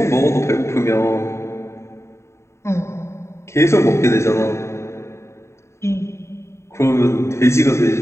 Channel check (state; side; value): late; right; 0.13 ms